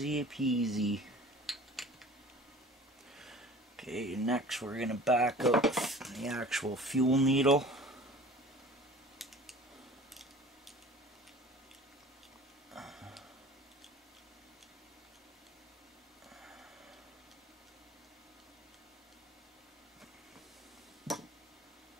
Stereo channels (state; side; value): normal; both; correlation 0.44